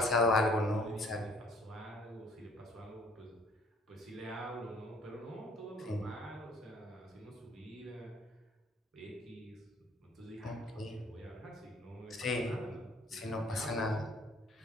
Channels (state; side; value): normal; both; correlation 0.58